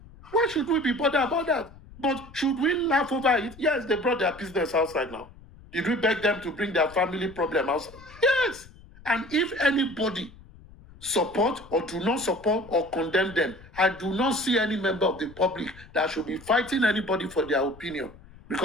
why should we be bothered about that? But should we laugh over it? Yes, they brought their business outside now. Did we beg them to bring their family problem outside? Yes. And if anybody support or do not support or condemn them, I do not see any member of the public that should be fighting anybody for their opinion,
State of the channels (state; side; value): noise; left; rumble, 21 dB below the sound